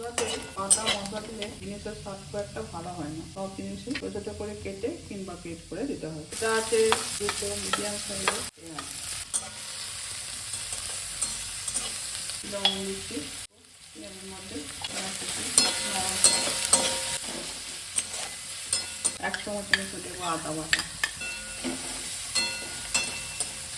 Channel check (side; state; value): both; identical; correlation 1.00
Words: আদা মশলা দিলে জিনিসের স্বাদ খুব একটা ভালো হয় না। সব জিনিসই ছোটো ছোটো করে কেটে কিংবা পেট করে দিতে হয়। এটা আছে দুটো মিডিয়াম সাইজের পেঁয়াজ, লবণ দিচ্ছি, পেঁয়াজের মধ্যে 1 চামচের মতো দেবো আদা বাটা,